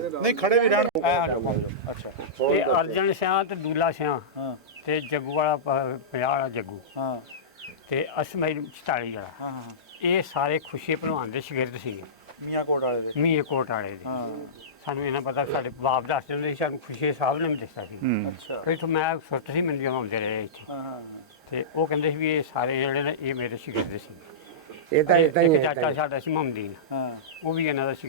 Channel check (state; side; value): normal; both; correlation -0.19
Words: ਨਹੀਂ ਖੜੇ ਵੀ ਰਹਿਣ। ਆ ਜਾਓ। ਅੱਛਾ ਇਹ ਅਰਜਨ ਸਿਆਂ ਤੇ ਦੂਲਾ ਸਿਆਂ ਹਾਂ ਤੇ ਜੱਗੂ ਵਾਲਾ 50 ਵਾਲਾ ਜੱਗੂ ਹਾਂ ਤੇ ਅਸਮਾਈ 44 ਵਾਲਾ, ਹਾਂ ਹਾਂ ਇਹ ਸਾਰੇ ਖੁਸ਼ੀ ਭਲਵਾਨ ਦੇ ਸ਼ਾਗਿਰਦ ਸੀਗੇ, ਮੀਆਂ ਕੋਟ ਵਾਲੇ ਦੇ। ਮੀਏ ਕੋਟ ਵਾਲੇ ਦੇ। ਹਾਂ ਸਾਨੂੰ ਇਹਨਾਂ ਪਤਾ, ਸਾਡੇ ਬਾਪ ਦੱਸਦੇ ਹੁੰਦੇ ਸੀ, ਸਾਨੂੰ ਖੁਸ਼ੀ ਸਾਹਿਬ ਨੇ ਵੀ ਦੱਸਿਆ ਸੀ। ਅੱਛਾ ਫਿਰ ਤੋਂ ਮੈਂ ਸੁਰਤ ਸੀ, ਮੈਨੂੰ ਜਦੋਂ ਆਉਂਦੇ ਰਹੇ ਇੱਥੇ, ਹਾਂ ਤੇ ਉਹ ਕਹਿੰਦੇ ਸੀ ਵੀ ਇਹ ਸਾਰੇ ਜਿਹੜੇ ਨੇ ਇਹ ਮੇਰੇ ਸ਼ਾਗਿਰਦ ਸੀ। ਇਹ ਤਾਂ ਇਦਾਂ ਹੀ ਇੱਕ ਚਾਚਾ ਸਾਡਾ ਸੀ ਮਮਦੀਨ, ਹਾਂ ਉਹ ਵੀ ਇਹਨਾਂ ਦਾ